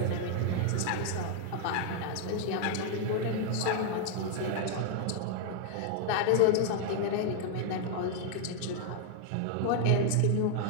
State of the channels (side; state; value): both; different; correlation 0.00